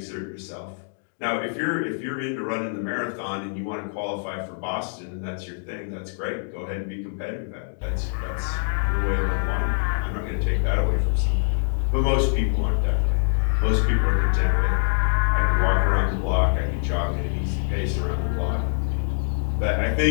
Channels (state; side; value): silent; right; digital silence